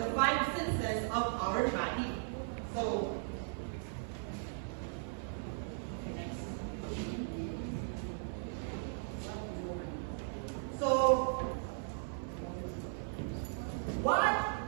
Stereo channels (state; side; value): silent; left; 53 dB below the other